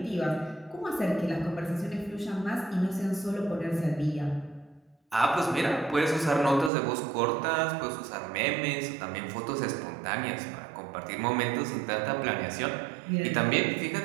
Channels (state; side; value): drops out; left; at 6.7 s